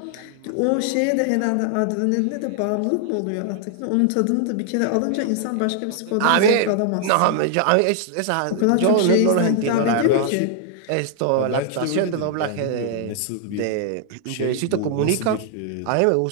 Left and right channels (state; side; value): different; both; correlation 0.00